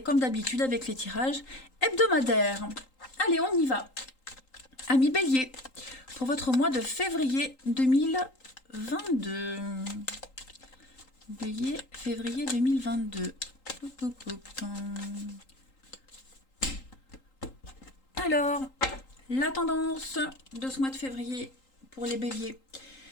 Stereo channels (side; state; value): right; late; 3.8 ms